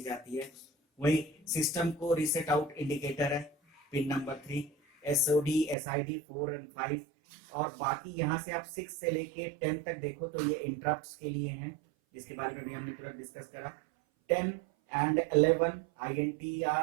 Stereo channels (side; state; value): left; drops out; at 5.8 s